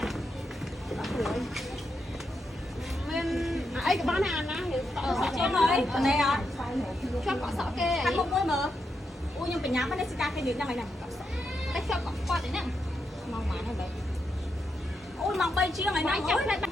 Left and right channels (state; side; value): normal; both; correlation 0.84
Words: មានអីក៏បានអាណាសក់ជាងហើយនេះអត់ ជាប់កក់សក់គេខាងមុខមួយមើលអូខ្ញុំបញ្ញាមិននេះសិកាគេនិយាយហ្នឹងហើយណាតែជាប់កក់គាត់ហ្នឹងមកម៉ានហើយបែអូយមក3ជាងហើយណាអូយតែ